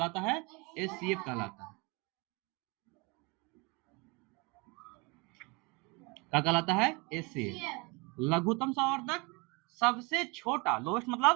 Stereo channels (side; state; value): left; quieter; 26.9 dB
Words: है? एचसीएफ कहलाता है। क्या कहलाता है? एचसीएफ। लघुत्तम समावर्तक सबसे छोटा, लोएस्ट